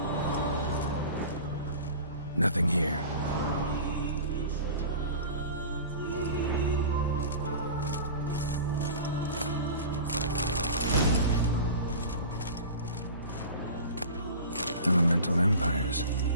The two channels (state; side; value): inverted; both; correlation -0.36